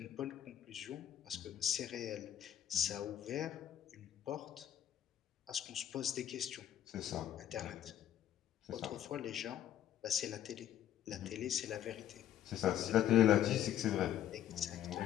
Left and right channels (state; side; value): quieter; right; 11.1 dB